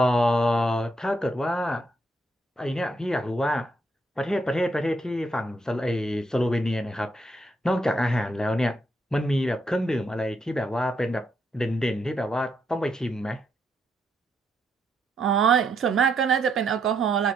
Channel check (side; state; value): both; normal; correlation 0.76